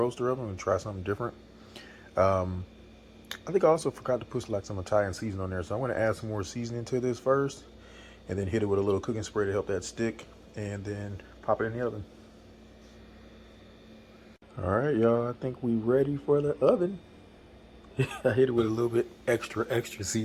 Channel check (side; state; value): both; identical; correlation 1.00